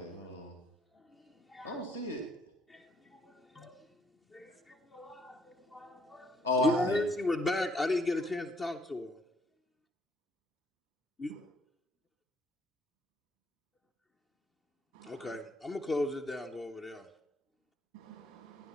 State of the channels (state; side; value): normal; both; correlation 0.68